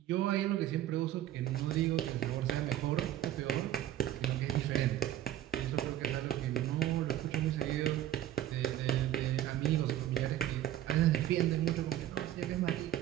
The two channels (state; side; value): quieter; left; 12.6 dB